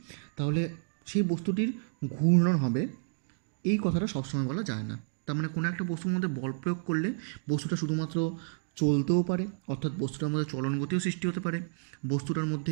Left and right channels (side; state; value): left; silent; digital silence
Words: তাহলে সেই বস্তুটির ঘূর্ণন হবে, এই কথাটা সবসময় বলা যায় না। তার মানে কোনো একটা বস্তুর মধ্যে বল প্রয়োগ করলে বস্তুটা শুধুমাত্র চলতেও পারে, অর্থাৎ বস্তুটার মধ্যে চলন গতিও সৃষ্টি হতে পারে, বস্তুটার